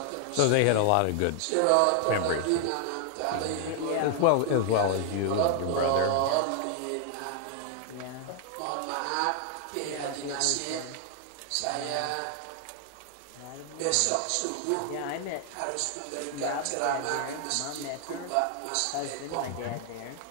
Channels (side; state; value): both; different; correlation 0.00